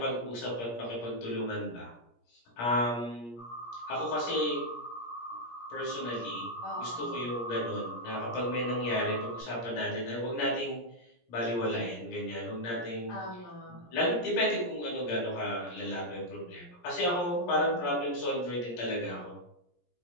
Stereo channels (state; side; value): late; right; 17 ms